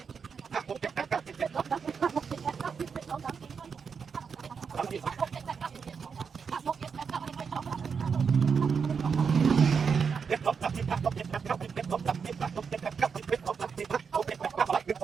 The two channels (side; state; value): left; quieter; 6.0 dB